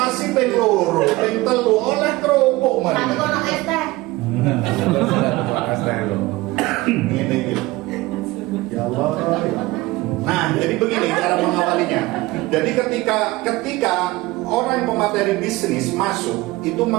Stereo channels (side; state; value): left; quieter; 20.1 dB